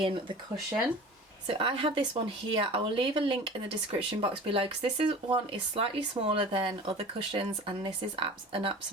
the cushion. So I have this one here. I will leave a link in the description box below because this one is slightly smaller than other cushions, and this is an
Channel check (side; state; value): both; normal; correlation 0.39